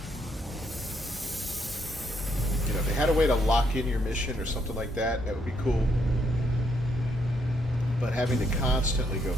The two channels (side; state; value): both; normal; correlation 0.74